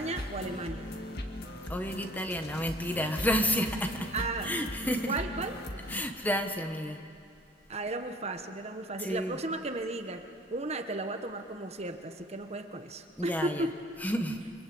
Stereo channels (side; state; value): both; normal; correlation 0.54